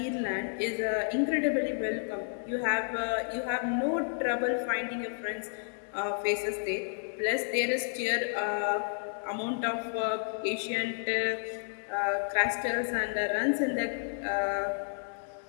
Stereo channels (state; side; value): silent; right; 57 dB below the other